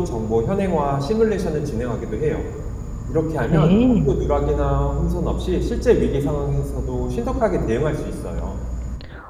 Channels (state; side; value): identical; both; correlation 1.00